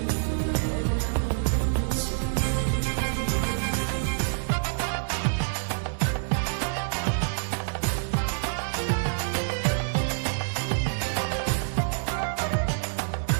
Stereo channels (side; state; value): left; silent; 60 dB below the other